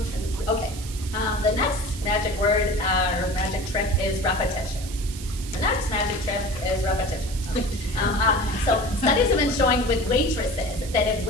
Okay, the next magic word or magic trick is repetition. The next magic trick is repetition. So studies have been showing with waitresses that if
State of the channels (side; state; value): right; noise; hiss, 13 dB below the sound